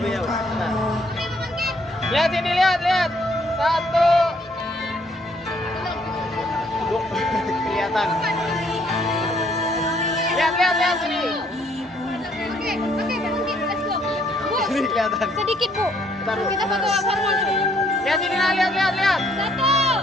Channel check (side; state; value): both; normal; correlation 0.66